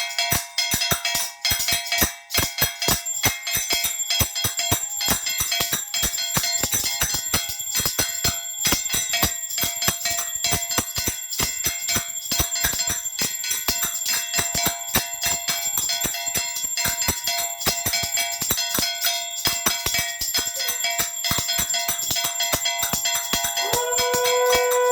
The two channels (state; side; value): identical; both; correlation 1.00